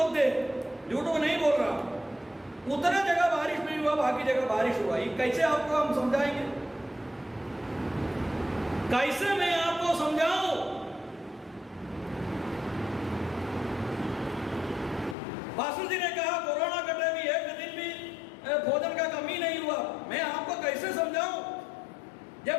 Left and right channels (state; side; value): drops out; right; at 15.2 s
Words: झूठ को नहीं बोल रहा, उतने जगह बारिश नहीं हुआ, बाकी जगह बारिश हुआ। ये कैसे आपको हम समझाएंगे, कैसे मैं आपको समझाऊं? पास्टर जी ने कहा कोरोना के टाइम भी एक दिन भी भोजन का कमी नहीं हुआ। मैं आपको कैसे समझाऊं?